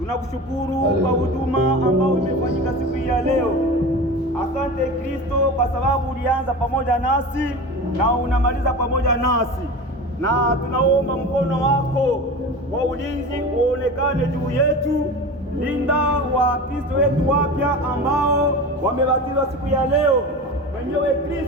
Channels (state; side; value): normal; both; correlation 0.31